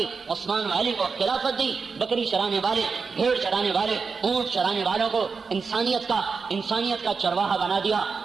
عثمان و علی کو خلافت دی، بکری چرانے والے، بھیڑ چرانے والے، اونٹ چرانے والوں کو انسانیت کا چرواہا بنا دیا،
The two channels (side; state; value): left; quieter; 5.0 dB